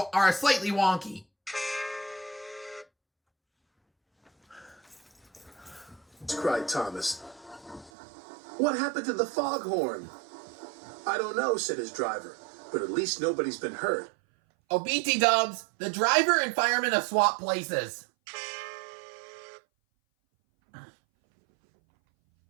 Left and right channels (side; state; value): left; drops out; at 7.9 s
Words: slightly wonky. Cried Thomas. What happened to the foghorn? I don't know, said his driver, but at least nobody's been hurt. Oh, BT dubs, the driver and fireman have swapped places.